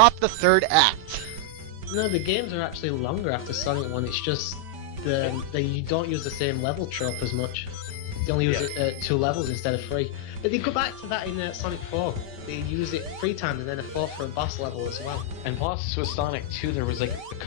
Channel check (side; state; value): left; late; 5.1 ms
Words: the 3rd act. No, the games are actually longer after Sonic 1, it's just you don't use the same level trope as much. They only use it 2 levels instead of 3. But they go back to that in Sonic 4. They use it 3 times and then a 4 for a boss level as well. And plus, with Sonic 2, there was like a